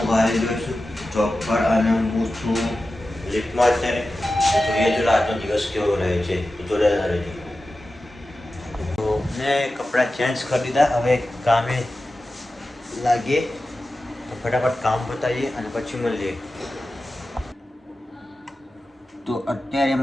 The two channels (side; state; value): both; normal; correlation 0.93